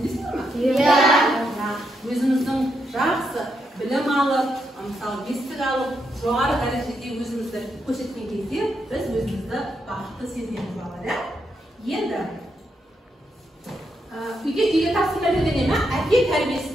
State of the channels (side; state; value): both; normal; correlation 0.81